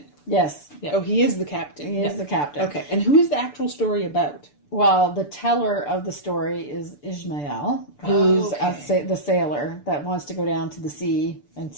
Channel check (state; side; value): late; right; 6.8 ms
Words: Yes. Oh, he is the captain. He is the captain. Okay. And who is the actual story about? Well, the teller of the story is Ishmael, who's the sailor that wants to go down to the sea and